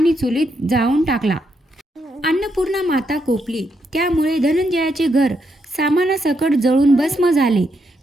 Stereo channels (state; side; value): normal; both; correlation 0.79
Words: चुलीत जाळून टाकला. अन्नपूर्णा माता कोपली. त्यामुळे धनंजयाचे घर सामानासकट जळून भस्म झाले.